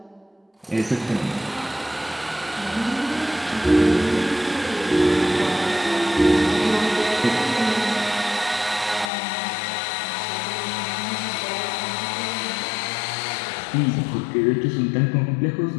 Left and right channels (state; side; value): drops out; right; at 9.1 s